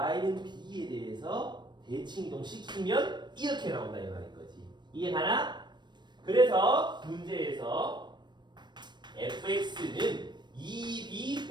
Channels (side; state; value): left; late; 0.22 ms